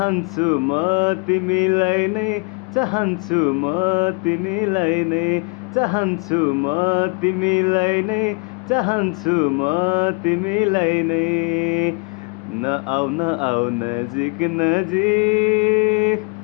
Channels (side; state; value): right; quieter; 34.6 dB